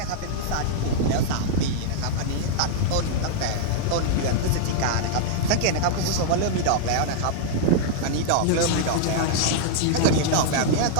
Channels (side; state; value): both; different; correlation -0.01